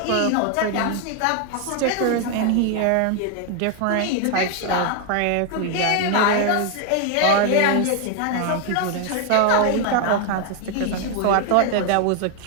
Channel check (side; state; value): both; different; correlation 0.00